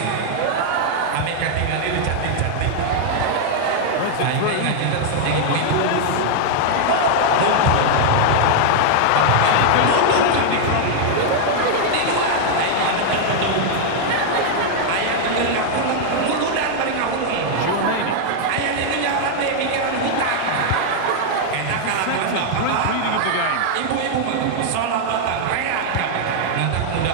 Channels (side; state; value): both; different; correlation -0.01